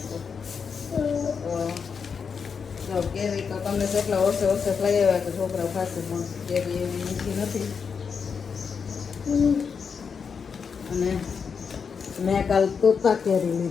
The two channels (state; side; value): quieter; right; 6.1 dB